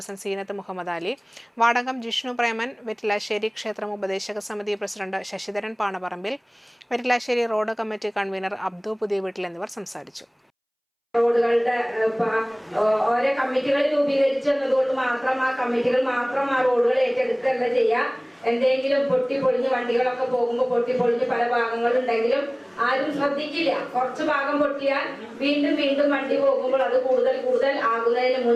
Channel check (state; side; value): identical; both; correlation 1.00